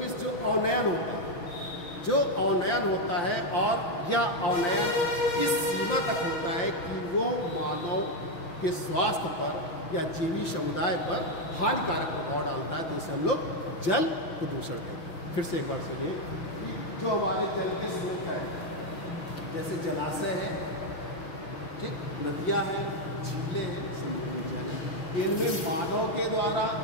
इस जो अवनयन होता है, और यह अवनयन इस सीमा तक होता है कि वो मानव के स्वास्थ्य पर या जीवी समुदाय पर हानिकारक प्रभाव डालता है, तो उसे हम लोग जल प्रदूषण कहते हैं। फिर से एक बार सुनिए, जो हमारे जल के स्रोत है, जैसे जलाशय है, ठीक, नदियाँ हैं, झीलें हैं, समुद्री जल है, इनमें मानव के द्वारा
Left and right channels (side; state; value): right; late; 5.8 ms